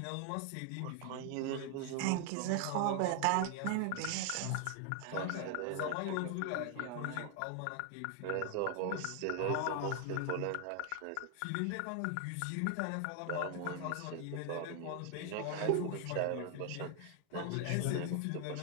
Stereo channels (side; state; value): both; different; correlation 0.00